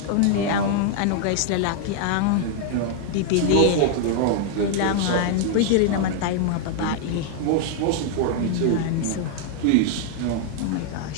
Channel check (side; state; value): both; different; correlation 0.00